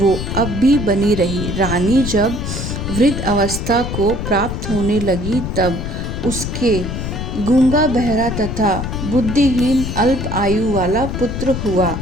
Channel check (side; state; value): left; noise; rumble, 4 dB below the sound